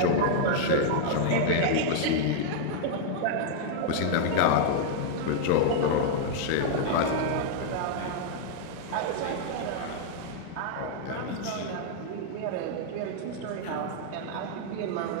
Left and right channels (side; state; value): both; different; correlation -0.01